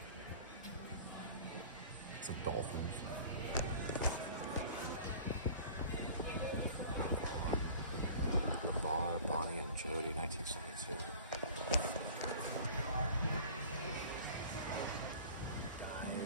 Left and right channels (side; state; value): both; inverted; correlation -0.43